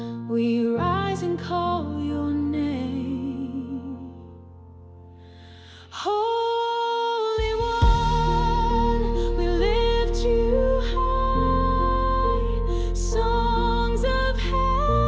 we rise and call your name. Holy One, we lift you high. Songs of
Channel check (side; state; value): both; identical; correlation 1.00